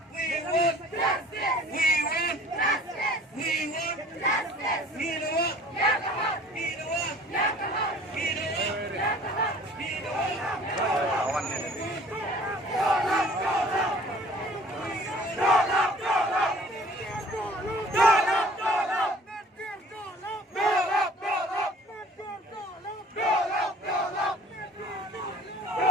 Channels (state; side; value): normal; both; correlation 0.50